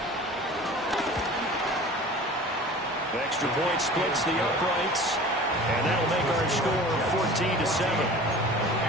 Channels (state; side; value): normal; both; correlation 0.41